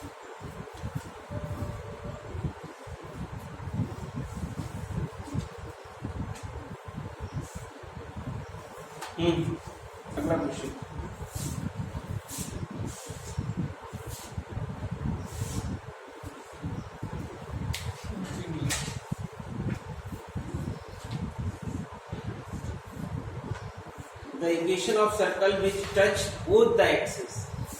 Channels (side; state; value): both; identical; correlation 1.00